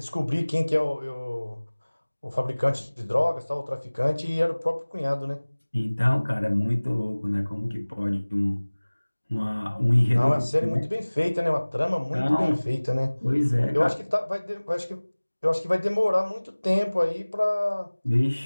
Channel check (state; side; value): inverted; both; correlation -1.00